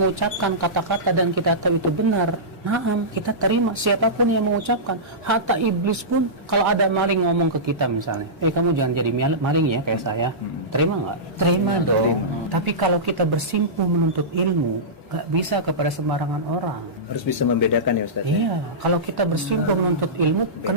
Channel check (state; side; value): normal; both; correlation -0.17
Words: kata-kata dan kita tahu itu benar, naam, kita terima siapapun yang mengucapkan. Hatta iblis pun, kalau ada maling ngomong ke kita misalnya, kamu jangan jadi maling ya kayak saya. Terima nggak? Terima dong. Tapi kalau kita bersimpuh menuntut ilmu, nggak bisa kepada sembarangan orang. Harus bisa membedakan ya Ustaz. Iya, kalau kita bersimpuh menuntut ilmu,